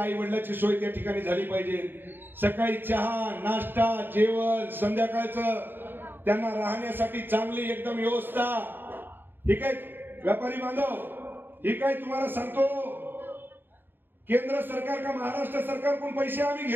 वडिलांची सोय त्या ठिकाणी झाली पाहिजे। सकाळी चहा नाश्ता जेवण संध्याकाळचं त्यांना राहण्यासाठी चांगली एकदम व्यवस्था। ही काय व्यापारी बांधव, ही काय तुम्हाला सांगतो केंद्र सरकार का महाराष्ट्र सरकार कोण पैसे आम्ही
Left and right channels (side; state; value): left; late; 0.096 ms